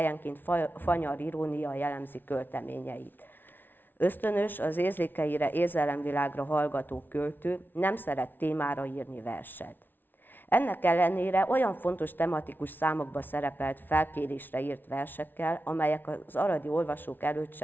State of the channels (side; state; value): right; late; 0.094 ms